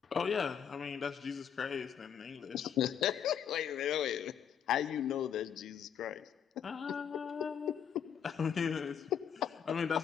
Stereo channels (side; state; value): right; quieter; 8.2 dB